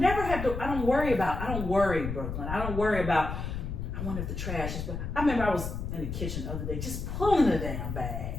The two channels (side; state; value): left; noise; rumble, 5 dB below the sound